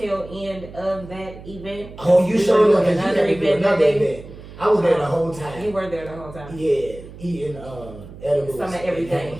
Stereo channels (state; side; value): noise; right; hum, 16 dB below the sound